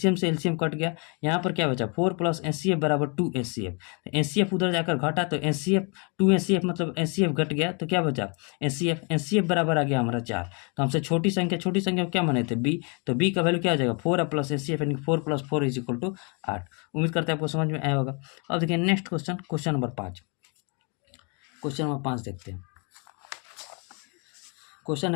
से एलसीएम कट गया, यहाँ पर क्या बचा 4 प्लस एचसीएफ बराबर 2 एचसीएफ। एचसीएफ उधर जाकर घटा तो एचसीएफ 2 एचसीएफ मतलब एचसीएफ घट गया, तो क्या बचा एचसीएफ बराबर आ गया हमारा 4। तो हमसे छोटी संख्या क्या माने थे b, तो b का वैल्यू क्या आ जाएगा 4 प्लस एचसीएफ यानी 4 प्लस 4 इज इक्वल टू 8। उम्मीद करते हैं आपको समझ में आया होगा। अब देखिए next question, question number 5। Question number 5 देखते हैं। क्वेश्चन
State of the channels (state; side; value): quieter; right; 35.0 dB